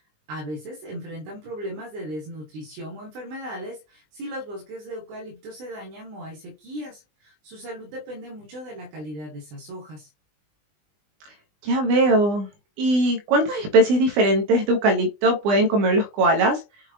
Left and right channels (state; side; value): late; left; 20 ms